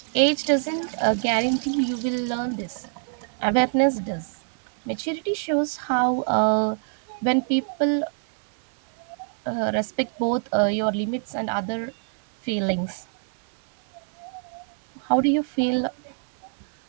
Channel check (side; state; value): left; silent; 61 dB below the other